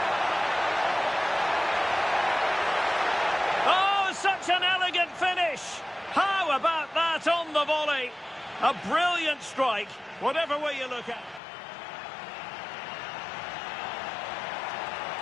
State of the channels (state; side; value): drops out; right; at 11.4 s